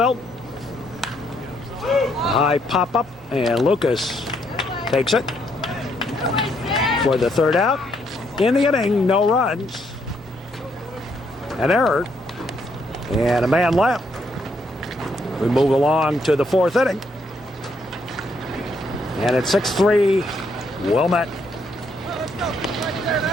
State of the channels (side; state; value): both; normal; correlation 0.73